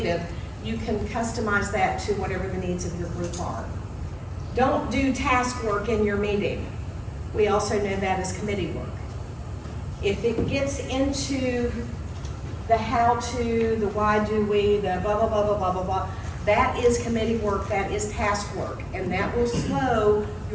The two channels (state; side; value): identical; both; correlation 1.00